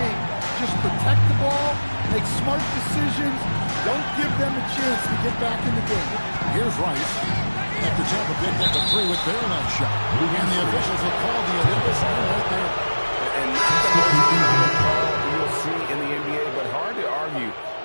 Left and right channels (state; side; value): inverted; both; correlation -1.00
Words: just protect the ball, make smart decisions, don't give them a chance to get back in the game. Here's Rice. After Tampa picked up the three with their left shot. And the officials will call the illegal sign right there. And not the most common call you'll see in the NBA, but hard to argue